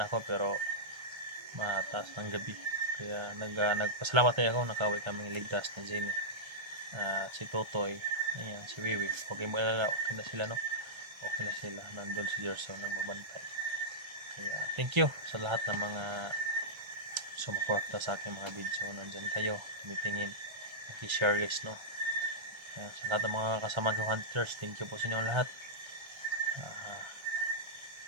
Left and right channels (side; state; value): left; late; 1.3 ms